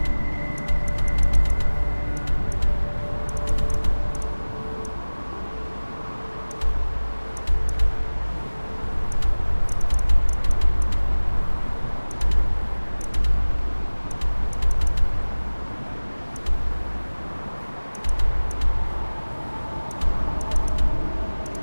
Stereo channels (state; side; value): inverted; both; correlation -1.00